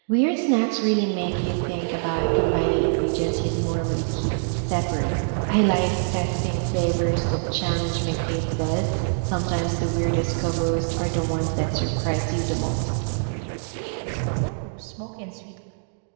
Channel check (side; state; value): left; silent; digital silence